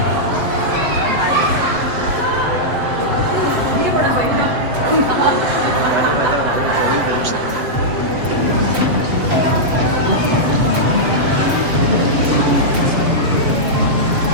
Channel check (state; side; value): late; left; 7.5 ms